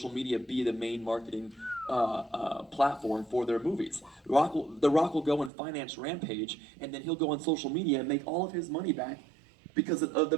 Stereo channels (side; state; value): left; drops out; at 5.5 s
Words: media be the main marketing platform for their movies. The Rock will go and finance Rampage, and then he'll go on social media and make all of his money back because of